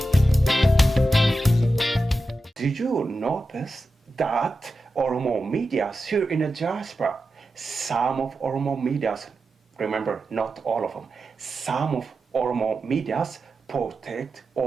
Did you notice that Oromo Medias here in the diaspora, some of Oromo Medias, remember not all of them, some of Oromo Medias protect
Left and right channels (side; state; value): both; normal; correlation 0.91